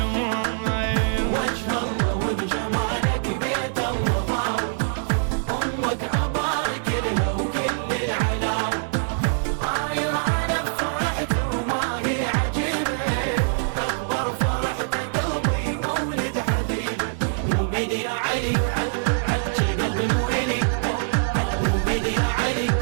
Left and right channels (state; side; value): silent; left; digital silence